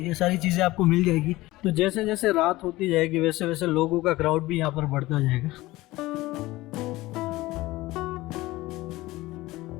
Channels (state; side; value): quieter; right; 18.7 dB